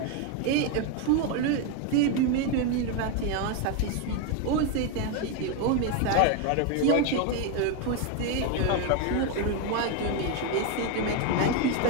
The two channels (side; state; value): both; different; correlation 0.02